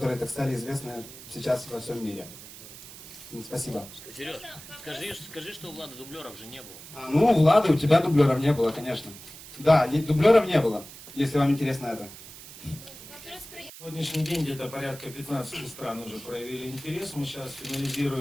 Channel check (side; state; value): right; noise; hiss, 16 dB below the sound